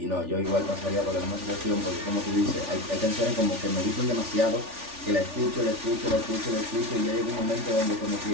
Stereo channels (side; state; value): left; late; 3.4 ms